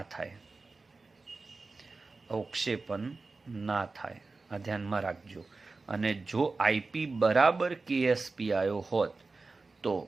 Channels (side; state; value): left; quieter; 3.8 dB